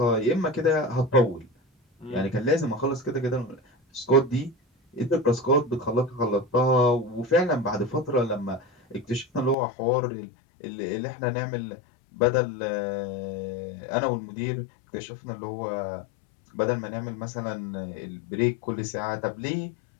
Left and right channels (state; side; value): drops out; right; at 9.6 s